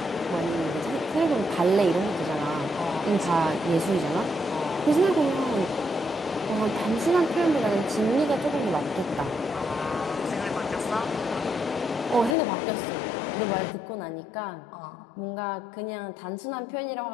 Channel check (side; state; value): right; drops out; at 12.4 s